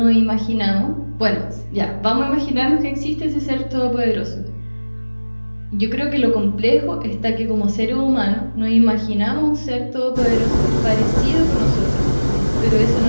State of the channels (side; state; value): both; inverted; correlation -1.00